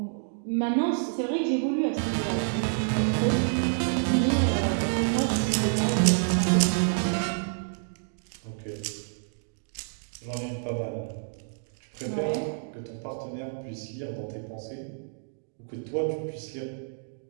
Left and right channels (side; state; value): left; silent; digital silence